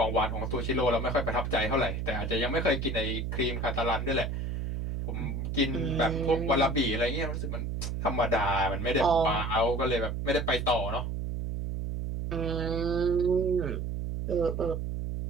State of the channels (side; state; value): right; noise; hum, 3 dB below the sound